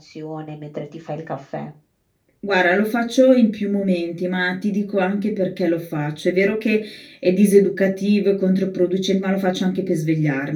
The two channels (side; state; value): both; identical; correlation 1.00